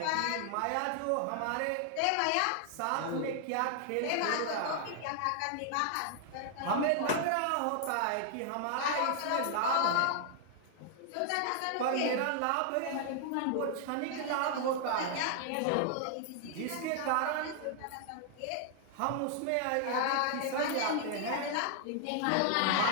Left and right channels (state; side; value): different; both; correlation 0.00